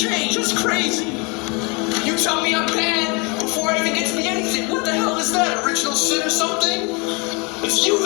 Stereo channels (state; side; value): quieter; right; 30.4 dB